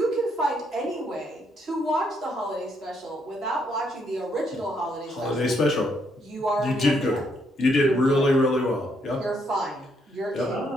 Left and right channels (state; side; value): normal; both; correlation 0.73